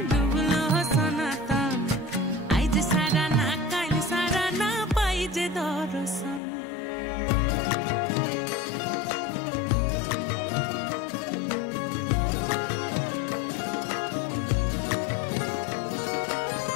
डुबलो सनातन आइज सारा ना काल सारा ना पाइजे दर्शन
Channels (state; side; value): drops out; right; at 6.4 s